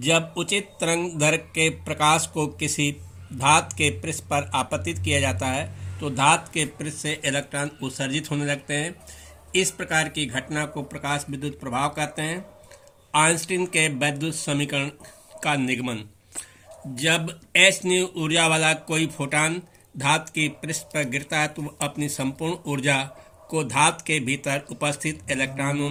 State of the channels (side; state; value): both; identical; correlation 1.00